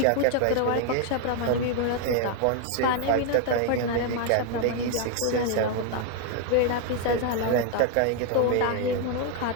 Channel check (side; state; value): both; different; correlation 0.01